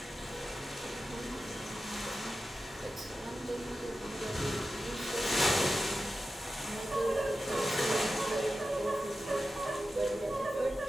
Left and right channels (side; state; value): both; normal; correlation 0.93